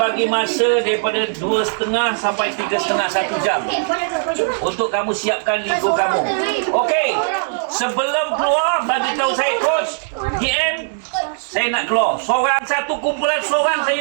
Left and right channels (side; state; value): left; silent; digital silence